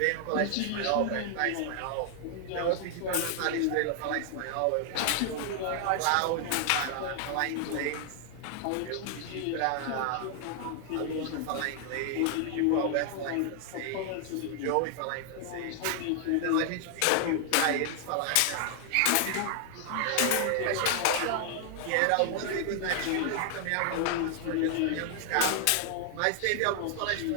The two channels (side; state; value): both; different; correlation 0.00